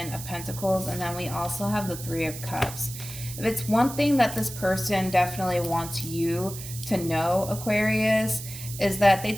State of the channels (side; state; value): right; noise; hiss, 11 dB below the sound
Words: of Pentacles. And then we also have the Three of Cups. If it's one thing that this person definitely wants you to know, Aquarius, is that they